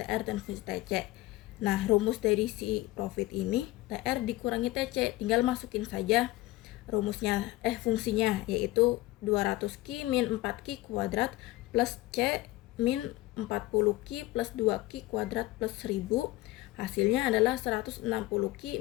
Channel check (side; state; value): right; quieter; 18.2 dB